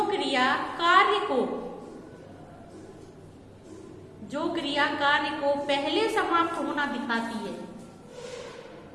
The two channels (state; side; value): identical; both; correlation 1.00